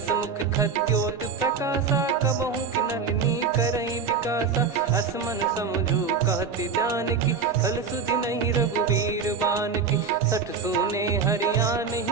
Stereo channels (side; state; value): left; quieter; 5.7 dB